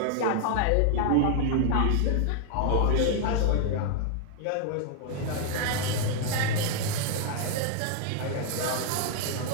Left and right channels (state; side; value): different; both; correlation 0.00